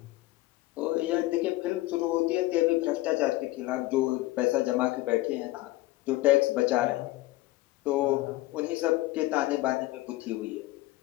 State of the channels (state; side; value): quieter; right; 18.2 dB